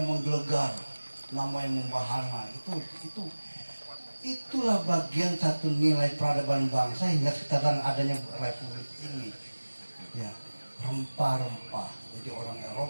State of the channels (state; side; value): inverted; both; correlation -1.00